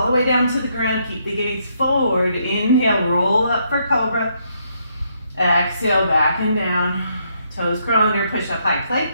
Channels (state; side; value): inverted; both; correlation -0.74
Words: the way down to the ground. Keep the gaze forward. Inhale, roll up for cobra. Exhale, back and down. Toes curl under, push up, high plank.